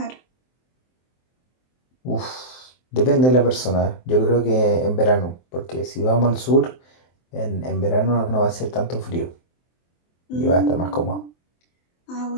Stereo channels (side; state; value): right; late; 23 ms